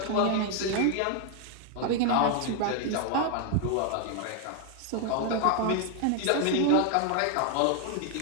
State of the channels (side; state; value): both; different; correlation 0.00